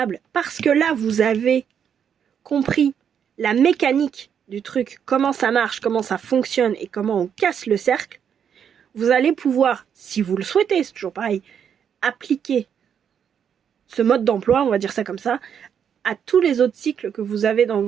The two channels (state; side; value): quieter; left; 8.0 dB